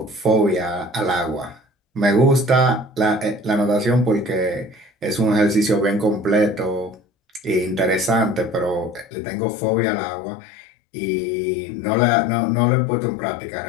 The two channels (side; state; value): right; drops out; at 9.1 s